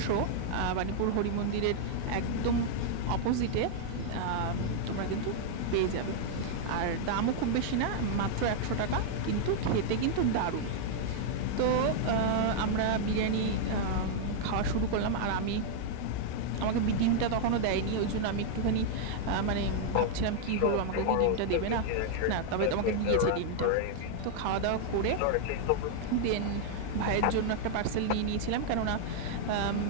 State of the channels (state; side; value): different; both; correlation -0.01